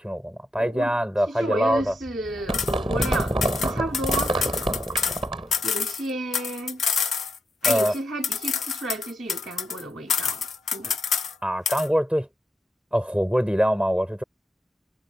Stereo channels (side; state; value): both; normal; correlation 0.84